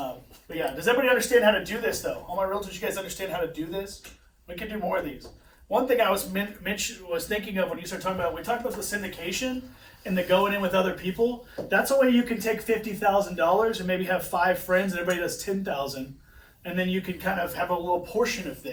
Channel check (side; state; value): both; identical; correlation 1.00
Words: yeah, does everybody understand how to do this though? All my realtors, you guys understand how to do this? We can do more of these. One thing I was thinking of when you started talking about, we talked about the syndication and the going in with other people. That's a way you can take $50,000 and maybe have 5 friends and everybody does $10,000, and then you can kind of have a little portion of